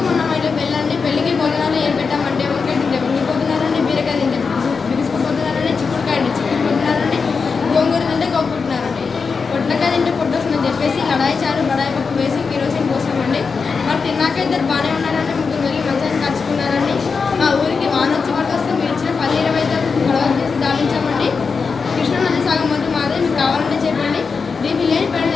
మొన్న మా ఇంట్లో పెళ్ళండి. పెళ్ళికి భోజనాలు ఏం పెట్టామంటే వంకాయ తింటే వంగిపోతున్నారండి, బీరకాయ తింటే బిగుసుకుపోతున్నారండి, చిక్కుడుకాయ చిక్కుపోతున్నారండి, గోంగూర తింటే కొట్టుకుంటున్నారండి, పొట్లకాయ తింటే పొట్టొస్తుందని చెప్పేసి లడాయి చారు బడాయి పప్పు వేసి కిరోసిన్ పోసామండి. మరి తిన్నాక ఇద్దరు బాగానే ఉన్నారండి, 3 వెళ్ళి మంచిగా కలుసుకున్నారండి. మా ఊరికి వాన వచ్చి పట్టుకొస్తే మీరు ఇచ్చిన 10-20 గొడవలు చేసి దావించామండి. కృష్ణానది సాగం మొత్తం మాదే, మీకు కావాలంటే చెప్పండి. డీపీ లేని పని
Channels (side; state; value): right; quieter; 5.1 dB